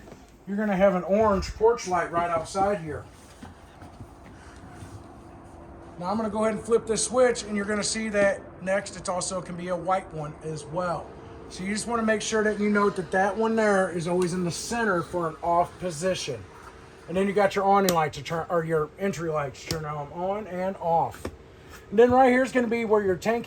you're going to have an orange porch light right outside here. Now I'm going to go ahead and flip this switch, and you're going to see that next it also can be a white one as well. So you just want to make sure that you note that that one there is always in the center for an off position. And then you got your awning light to turn, or your entry lights to turn them on and off. And then right here is going to be where your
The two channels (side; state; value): both; identical; correlation 1.00